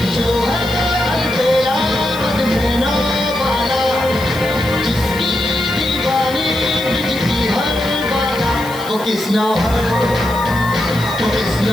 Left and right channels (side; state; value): left; noise; hiss, 17 dB below the sound